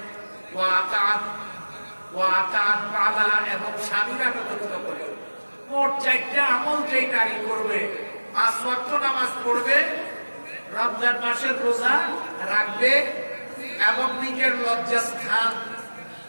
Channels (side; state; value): both; inverted; correlation -1.00